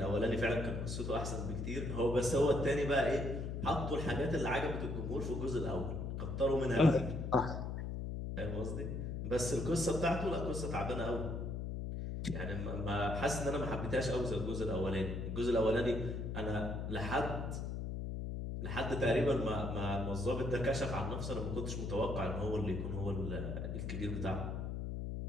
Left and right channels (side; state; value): left; noise; hum, 4 dB below the sound